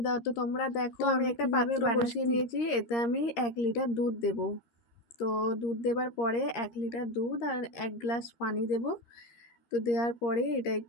তো তোমরা দেখো, আমি একটা কিভাবে পাত্র বসিয়ে বানাচ্ছি। নিয়েছি। এতে আমি 1 লিটার দুধ দেব। তো দুধ দেবার পরে 1 লিটার দুধ আর 1 গ্লাস পানি দেব। তো দেওয়ার পরে এটা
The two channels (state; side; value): late; right; 13 ms